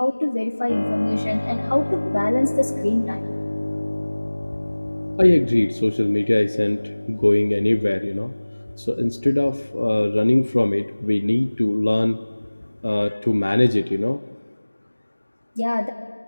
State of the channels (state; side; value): inverted; both; correlation -1.00